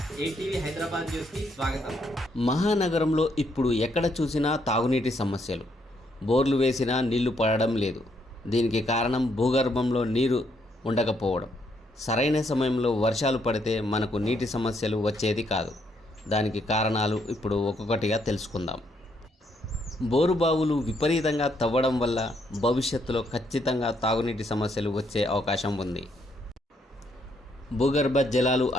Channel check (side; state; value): both; normal; correlation 0.73